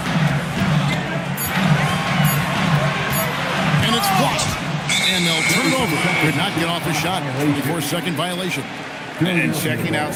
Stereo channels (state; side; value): identical; both; correlation 1.00